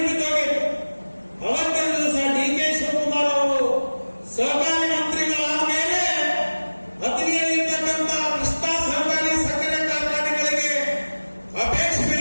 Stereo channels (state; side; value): inverted; both; correlation -1.00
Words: ಬಿದ್ದೋಗಿತ್ತು. ಅವತ್ತಿನ ದಿವಸ ಡಿ ಕೆ ಶಿವಕುಮಾರ್ ಅವರು ಸಹಕಾರಿ ಮಂತ್ರಿಗಳಾದ ಮೇಲೆ ಹತ್ತನೆಯಲ್ಲಿರ್ತಕ್ಕಂಥ ಕೃಷ್ಣ ಸಹಕಾರಿ ಸಕ್ಕರೆ ಕಾರ್ಖಾನೆಗಳಿಗೆ ಅಪೇಕ್ಷೆ